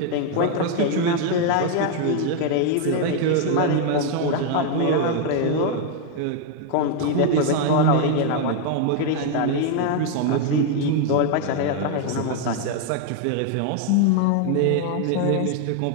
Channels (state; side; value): different; both; correlation 0.01